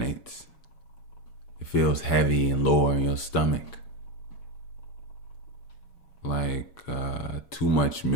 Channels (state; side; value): late; right; 7.2 ms